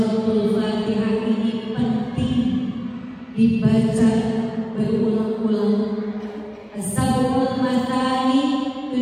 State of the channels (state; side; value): identical; both; correlation 1.00